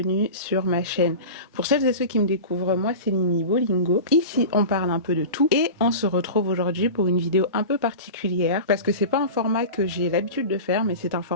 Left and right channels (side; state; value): both; inverted; correlation -0.31